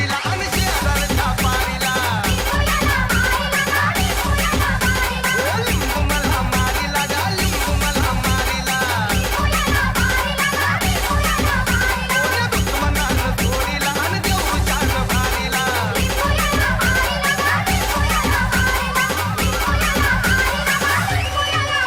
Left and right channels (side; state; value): both; identical; correlation 1.00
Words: आणि शेजारच्या पारीला लिंबू मला मारीला गा लिंबू मला मारीला दुश्मनानं चोरीला आणि देऊळच्यानं भारीला